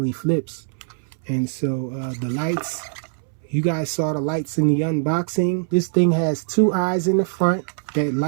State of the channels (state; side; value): silent; left; 64 dB below the other